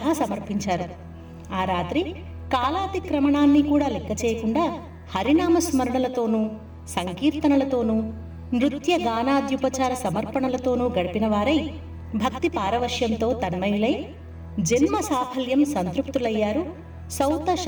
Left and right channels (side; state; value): both; identical; correlation 1.00